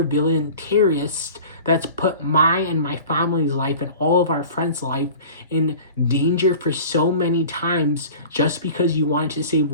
terrorist that's put my and my family's life and all of our friends' life in danger for so many times just because you wanted to save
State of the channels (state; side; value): inverted; both; correlation -0.40